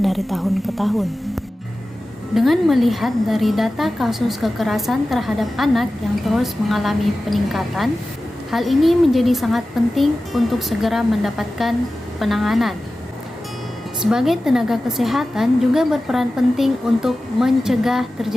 dari tahun ke tahun. Dengan melihat dari data kasus kekerasan terhadap anak yang terus mengalami peningkatan, hal ini menjadi sangat penting untuk segera mendapatkan penanganan. Sebagai tenaga kesehatan juga berperan penting untuk mencegah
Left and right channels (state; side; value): normal; both; correlation 0.95